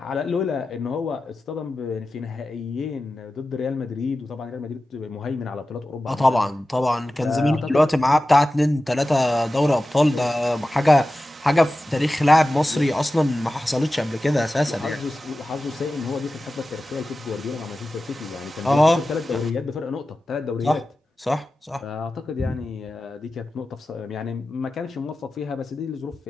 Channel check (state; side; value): normal; both; correlation 0.94